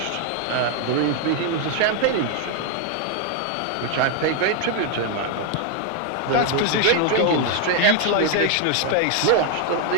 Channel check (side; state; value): both; different; correlation 0.00